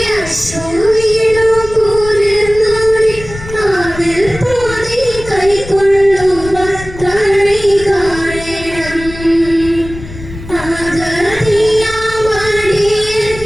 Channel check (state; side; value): noise; left; rumble, 13 dB below the sound